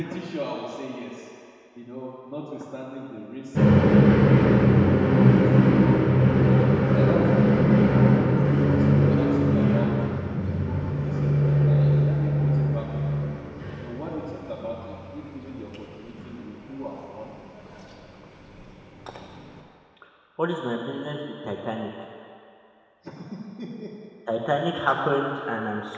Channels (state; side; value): identical; both; correlation 1.00